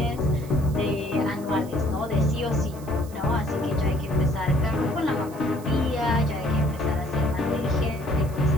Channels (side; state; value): right; noise; hiss, 21 dB below the sound